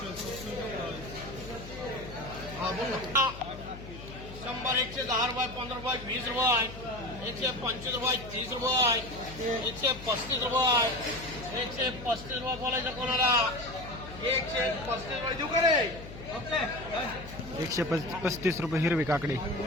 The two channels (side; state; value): left; noise; hum, 13 dB below the sound